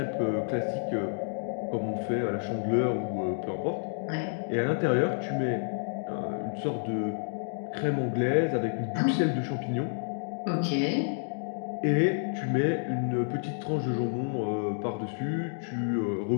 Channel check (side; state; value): right; silent; digital silence